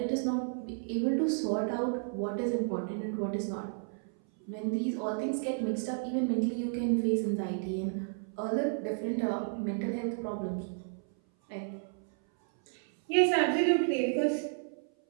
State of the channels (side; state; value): left; silent; 56 dB below the other